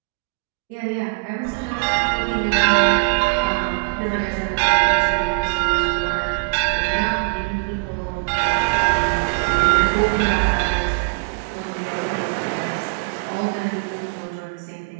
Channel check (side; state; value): left; quieter; 33.4 dB